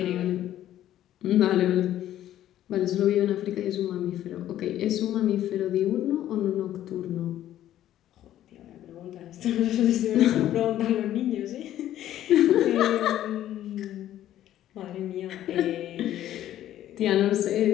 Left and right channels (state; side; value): quieter; right; 12.4 dB